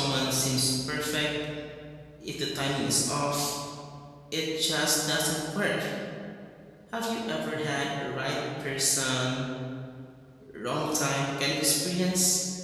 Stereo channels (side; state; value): both; identical; correlation 1.00